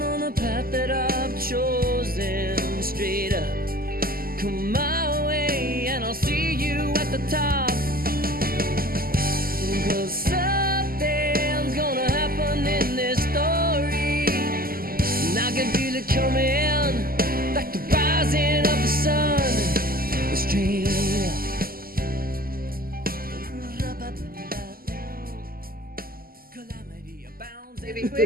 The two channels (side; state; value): left; late; 0.42 ms